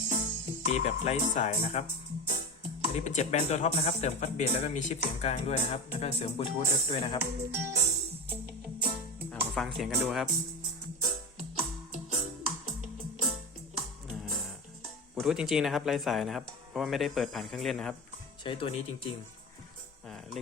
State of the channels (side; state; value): both; normal; correlation 0.25